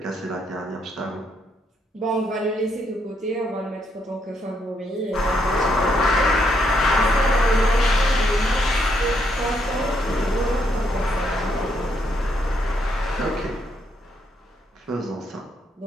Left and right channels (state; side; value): normal; both; correlation 0.75